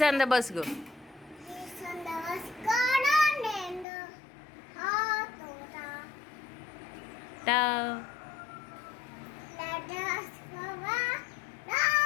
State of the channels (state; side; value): drops out; right; at 3.9 s